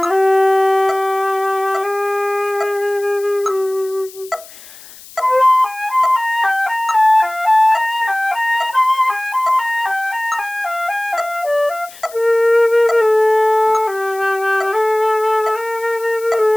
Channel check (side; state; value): left; noise; hiss, 20 dB below the sound